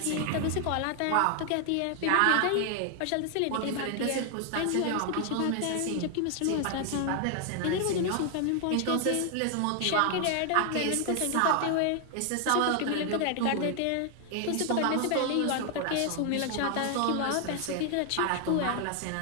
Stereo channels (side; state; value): both; different; correlation 0.00